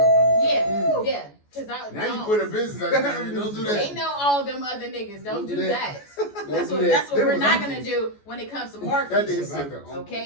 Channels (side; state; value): right; late; 14 ms